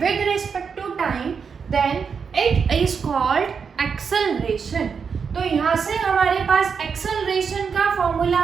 With respect to time, then it is called acceleration. तो यहां से हमारे पास एक्सेलरेशन का फॉर्मूला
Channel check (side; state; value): left; quieter; 6.1 dB